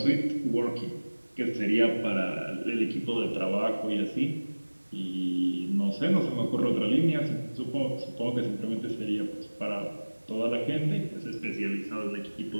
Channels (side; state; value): both; inverted; correlation -1.00